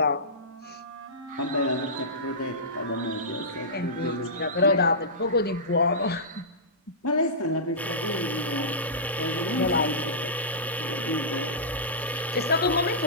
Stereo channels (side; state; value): both; normal; correlation -0.17